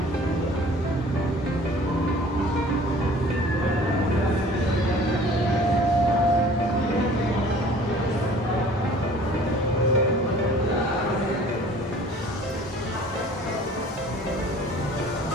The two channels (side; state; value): both; normal; correlation 0.49